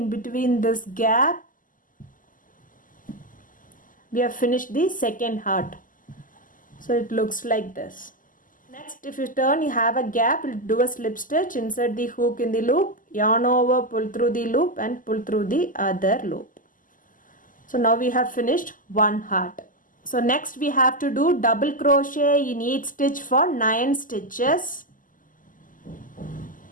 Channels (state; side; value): late; right; 0.39 ms